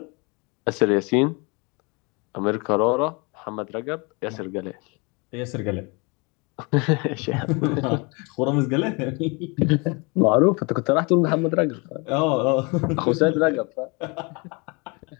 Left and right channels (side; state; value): right; quieter; 29.8 dB